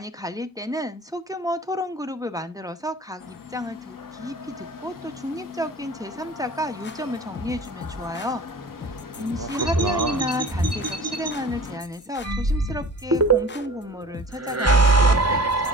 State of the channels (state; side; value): normal; both; correlation 0.42